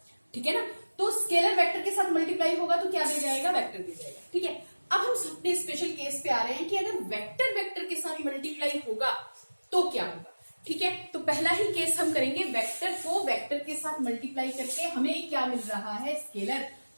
ठीक है ना, तो स्केलर वेक्टर के साथ मल्टीप्लाई होगा तो क्या दे जाएगा? वेक्टर दे जाएगा। ठीक है, अब हम अपने स्पेशल केस पे आ रहे हैं कि अगर वेक्टर वेक्टर के साथ मल्टीप्लाई होगा तो क्या होगा। ठीक है, तो पहला ही केस हम करेंगे, वेक्टर को वेक्टर के साथ मल्टीप्लाई करके हमें क्या मिल रहा है? स्केलर।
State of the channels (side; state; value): both; inverted; correlation -1.00